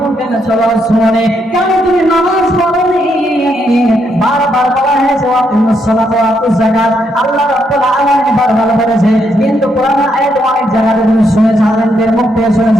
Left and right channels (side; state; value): both; normal; correlation 0.77